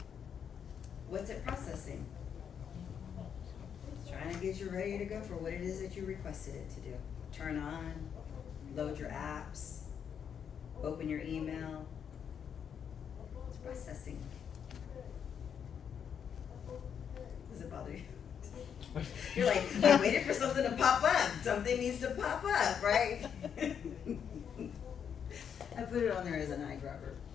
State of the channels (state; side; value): quieter; right; 7.8 dB